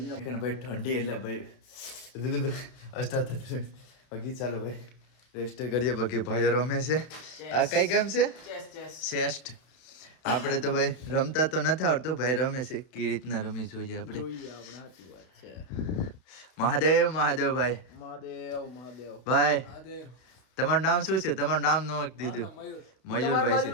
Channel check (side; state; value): right; late; 32 ms